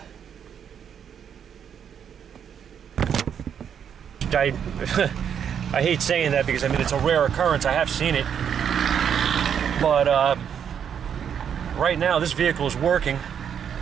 hate saying that because I mean it's a rare occurrence. I have seen it, but right now this vehicle is working.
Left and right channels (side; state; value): left; quieter; 8.2 dB